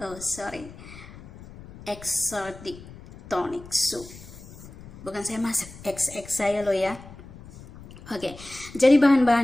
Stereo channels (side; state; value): left; noise; rumble, 17 dB below the sound